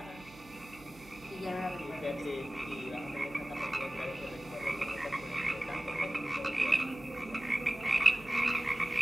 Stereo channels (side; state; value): right; noise; hum, 21 dB below the sound